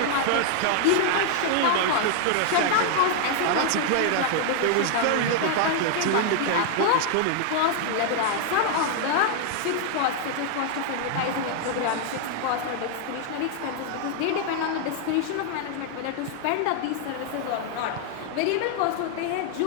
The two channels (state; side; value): different; both; correlation 0.00